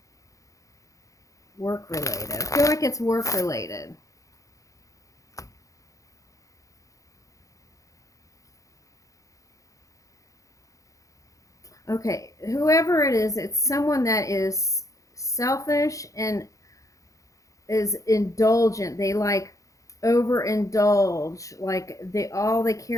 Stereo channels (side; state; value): right; late; 0.16 ms